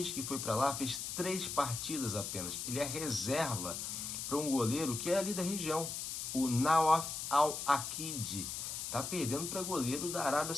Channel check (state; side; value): noise; left; hiss, 4 dB below the sound